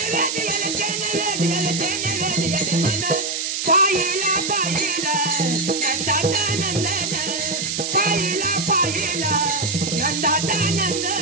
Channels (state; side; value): noise; right; hiss, 2 dB below the sound